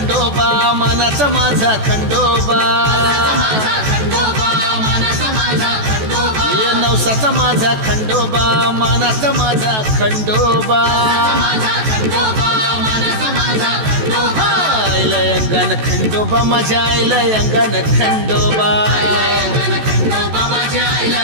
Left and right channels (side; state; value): left; late; 14 ms